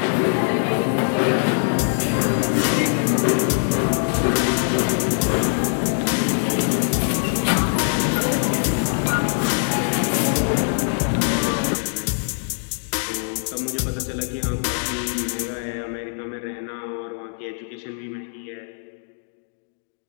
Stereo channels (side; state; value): right; silent; digital silence